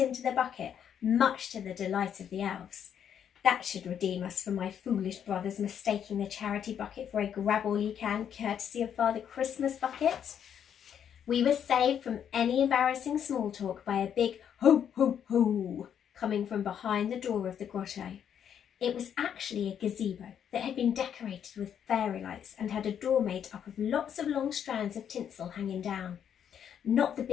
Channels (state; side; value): quieter; right; 8.7 dB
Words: the bucket, much to the delight of the elves. That should redeem us for my foolish brothers mistaking the charity bucket for a grab-all-you-can courtesy of Father Christmas bucket. We were saved from any embarrassing small talk by a big "ho, ho, ho" coming from behind the door of the grotto. It was actually a gazebo that had been decorated with fairy lights and had a door made up of lots of long strands of tinsel hanging down. Not the